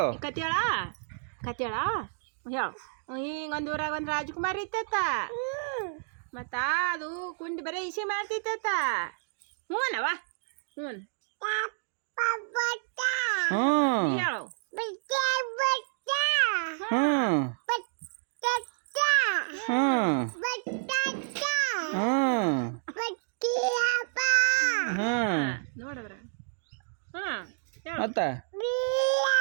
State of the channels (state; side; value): silent; left; digital silence